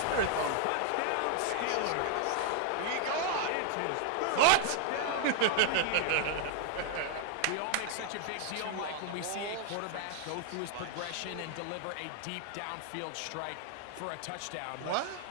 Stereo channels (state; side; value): different; both; correlation 0.00